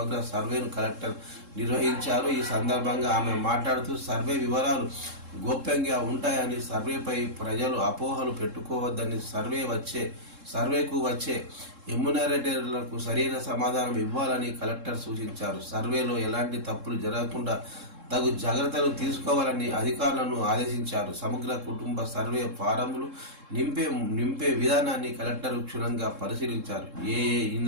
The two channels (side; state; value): left; late; 3.7 ms